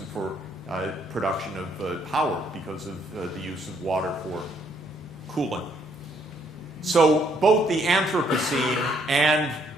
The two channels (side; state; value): both; normal; correlation 0.69